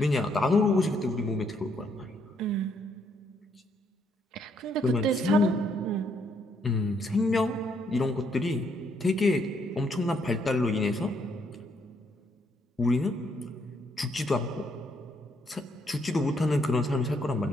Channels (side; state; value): both; normal; correlation 0.72